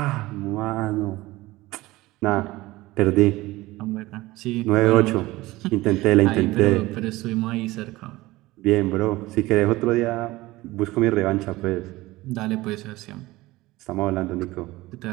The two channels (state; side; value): quieter; left; 19.1 dB